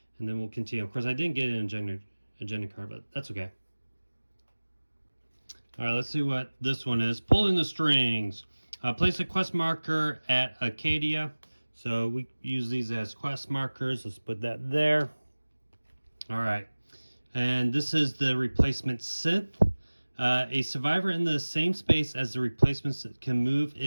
and then we'll continue. Of course, I didn't get an agenda card, but that's okay. All right, let's see what this one is. Pulling the strings. Place a quest marker at Acadia. So we use these as quest markers. Let's put that there. All right. And this is the replacement synth. A survivor in the same space as the replacements can move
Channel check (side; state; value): both; inverted; correlation -1.00